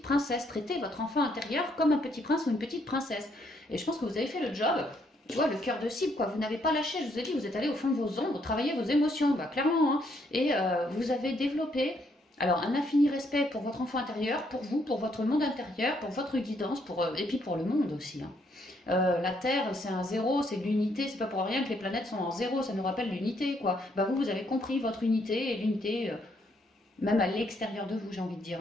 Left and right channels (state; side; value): normal; both; correlation 0.72